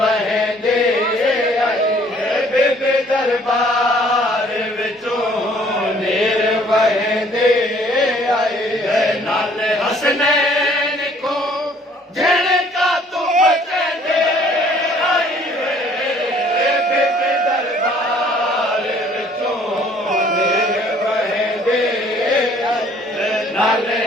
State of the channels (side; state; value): both; normal; correlation 0.58